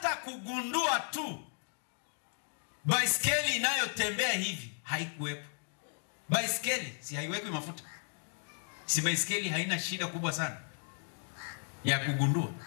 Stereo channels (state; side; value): silent; right; 55 dB below the other